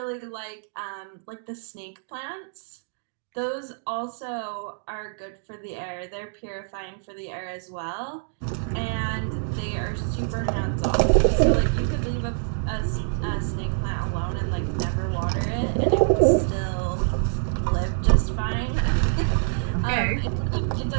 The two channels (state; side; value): silent; left; digital silence